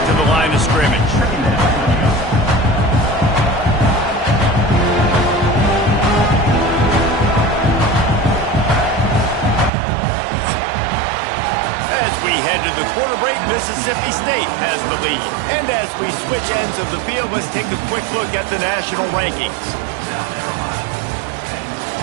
to the line of scrimmage. As we head to the quarter break, Mississippi State has the lead. And as we switch ends of the field, let's take a quick look at the national rankings.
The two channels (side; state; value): left; drops out; at 9.7 s